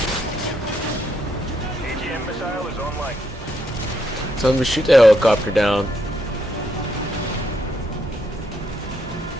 AGM missile is online. Tell them to shoot the helicopter down.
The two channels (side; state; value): both; normal; correlation 0.77